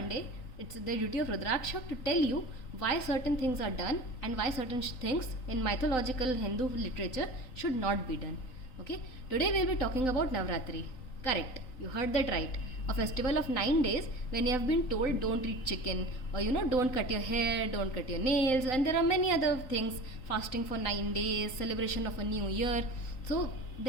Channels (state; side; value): late; right; 3.9 ms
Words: it's the duty of Rudraksha to tell you why certain things are done and why certain things in mythological Hindu literature should not be done. Okay, today we'll be talking about Navratri. Correct, you heard that right. A festival of 9 days when you have been told don't eat chicken, or don't cut your hair, don't cut your nails, and there are many other things, fasting for 9 days, celebration of a new year. So